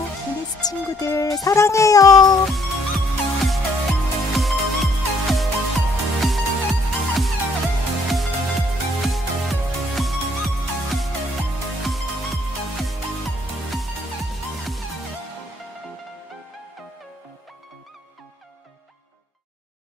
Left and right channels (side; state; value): both; normal; correlation 0.65